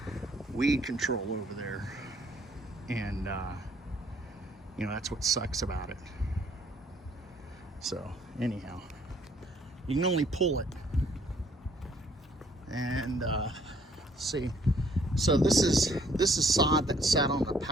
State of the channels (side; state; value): both; normal; correlation 0.62